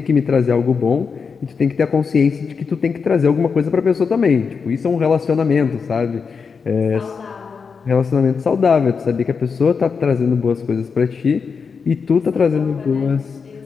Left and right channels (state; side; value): quieter; right; 5.6 dB